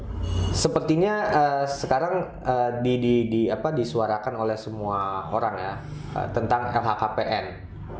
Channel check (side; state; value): both; identical; correlation 1.00